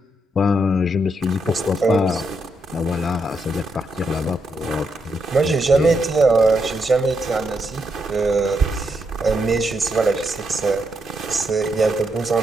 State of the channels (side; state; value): both; normal; correlation 0.80